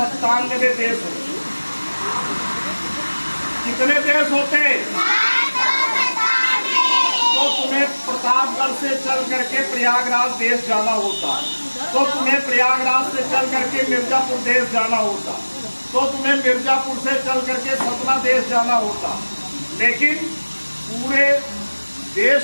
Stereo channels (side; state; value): both; inverted; correlation -1.00